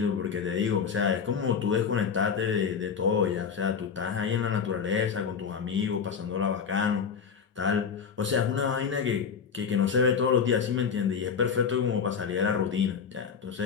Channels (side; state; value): right; quieter; 6.5 dB